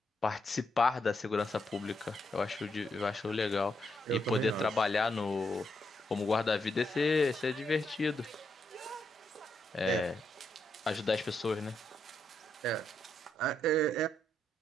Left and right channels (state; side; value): normal; both; correlation 0.79